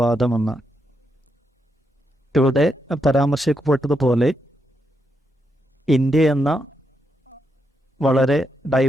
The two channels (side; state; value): both; normal; correlation 0.81